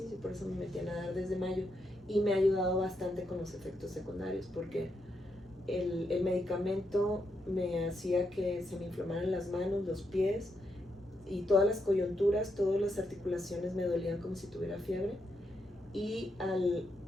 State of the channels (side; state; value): both; normal; correlation 0.81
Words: Por eso me metí a nadar desde mayo, y me ha ayudado bastante con los efectos secundarios, porque el medicamento me hacía que se me inflamaran las manos, los pies, y todas las coyunturas, todas las articulaciones me dolían como si tuviera fiebre, y